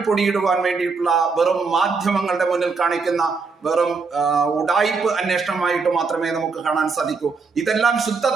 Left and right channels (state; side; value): quieter; left; 4.6 dB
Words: പൊടിയിടുവാൻ വേണ്ടിയിട്ടുള്ള വെറും മാധ്യമങ്ങളുടെ മുന്നിൽ കാണിക്കുന്ന വെറും ഉഡായിപ്പ് അന്വേഷണമായിട്ട് മാത്രമേ നമുക്ക് കാണാൻ സാധിക്കൂ. ഇതെല്ലാം ശുദ്ധ